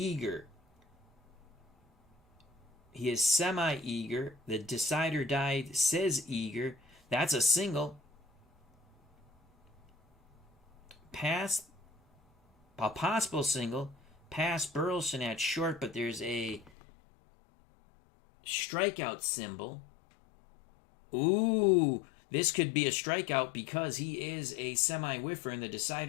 He is semi-eager. The decider die says eager. That's a single. Pass, a possible single, past Burleson at short, but there's a strikeout symbol. Ooh, this could be a strikeout because he is a semi-whiffer, and the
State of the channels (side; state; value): right; drops out; at 16.7 s